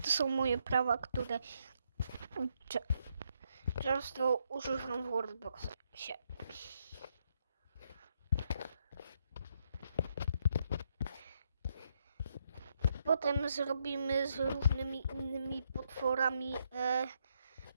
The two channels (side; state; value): both; inverted; correlation -0.77